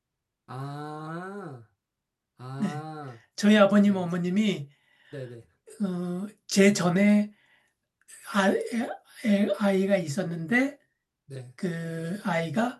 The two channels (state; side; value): identical; both; correlation 1.00